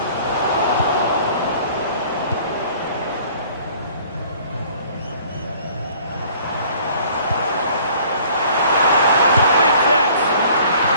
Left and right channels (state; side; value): inverted; both; correlation -0.53